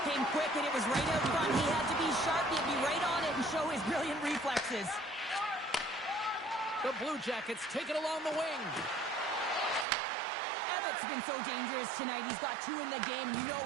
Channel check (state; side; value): drops out; left; at 9.9 s